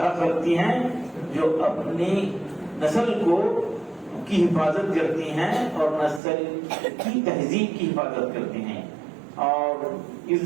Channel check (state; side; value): drops out; left; at 6.2 s